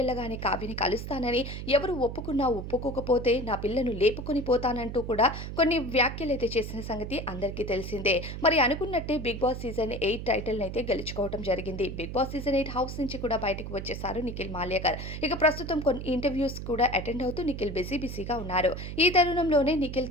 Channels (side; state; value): right; noise; hum, 7 dB below the sound